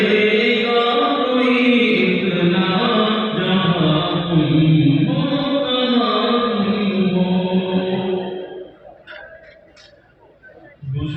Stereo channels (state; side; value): identical; both; correlation 1.00